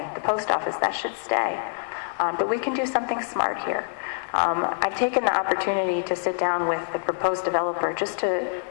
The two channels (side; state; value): right; silent; digital silence